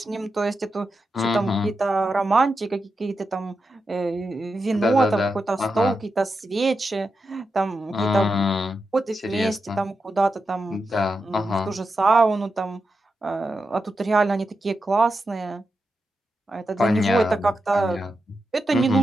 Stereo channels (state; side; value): normal; both; correlation 0.88